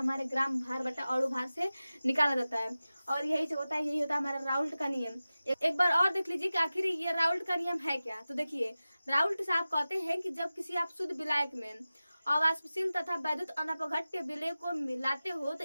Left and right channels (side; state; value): both; inverted; correlation -0.96